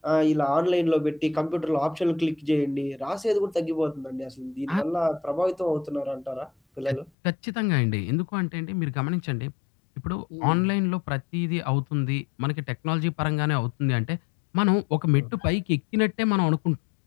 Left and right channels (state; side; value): drops out; right; at 7.1 s